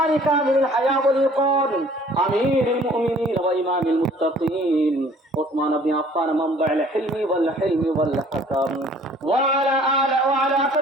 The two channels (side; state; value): both; normal; correlation 0.54